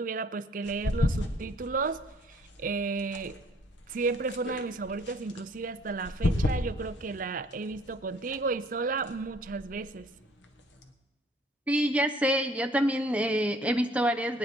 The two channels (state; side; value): normal; both; correlation 0.58